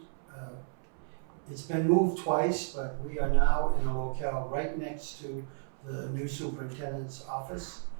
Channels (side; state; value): left; silent; 56 dB below the other